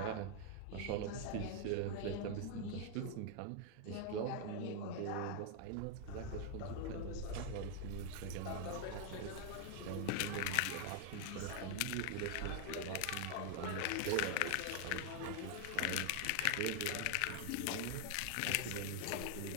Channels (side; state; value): both; different; correlation 0.00